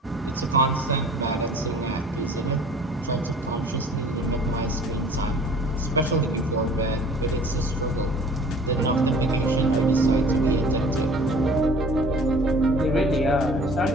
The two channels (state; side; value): normal; both; correlation 0.47